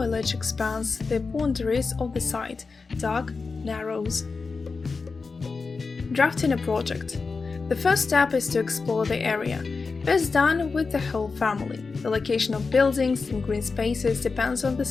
expands the boundaries of the site, dark narrows. Drafting a project. The first step is to explore the area. Best done with the whole family. The location of buildings and green spaces depends on the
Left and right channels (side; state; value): right; quieter; 4.5 dB